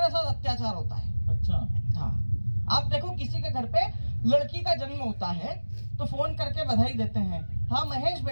साथ अत्याचार होता है। अच्छा हाँ, आप देखो किसी के घर पे लड़की का जन्म होता है तो फोन करके बधाई देते हैं। हाँ महेश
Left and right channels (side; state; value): both; inverted; correlation -1.00